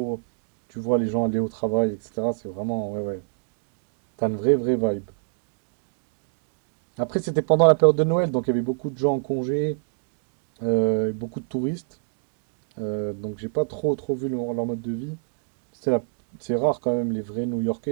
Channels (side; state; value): left; silent; digital silence